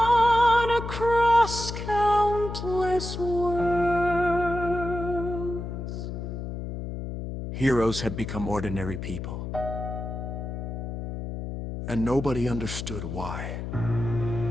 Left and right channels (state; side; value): noise; left; hum, 6 dB below the sound